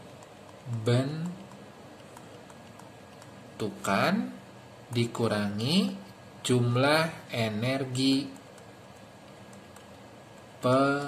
dikurangi jumlah energi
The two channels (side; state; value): both; identical; correlation 1.00